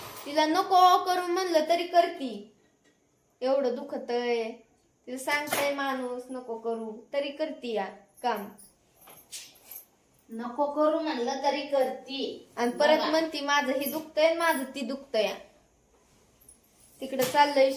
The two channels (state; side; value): identical; both; correlation 1.00